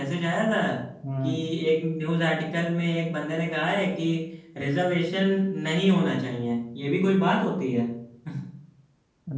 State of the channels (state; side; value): identical; both; correlation 1.00